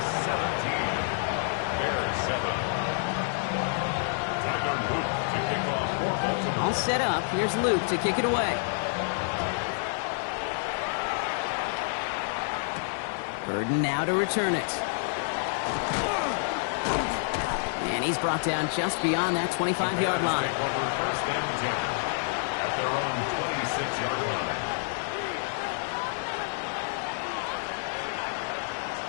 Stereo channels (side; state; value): right; silent; digital silence